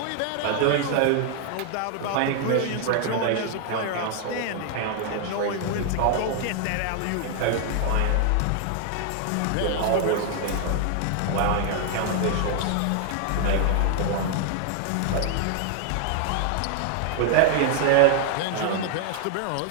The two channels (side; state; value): both; different; correlation 0.00